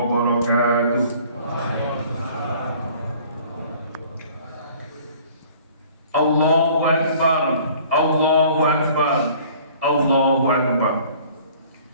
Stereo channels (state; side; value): inverted; both; correlation -0.52